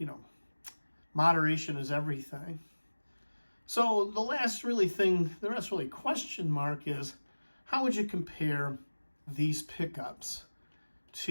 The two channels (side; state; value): both; inverted; correlation -1.00